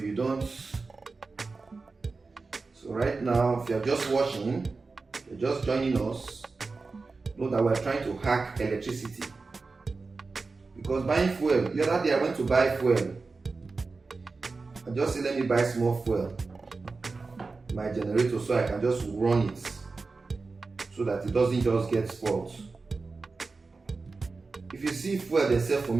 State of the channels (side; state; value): left; quieter; 4.0 dB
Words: don't. So right now, if you're just watching, you're just joining us, know that we're trying to hack electricity. Because buying fuel, the other day I went to buy fuel. I just said, let me buy small fuel, my generator, so I can just run it, so that it doesn't just get spoiled. If you see fuel they sell for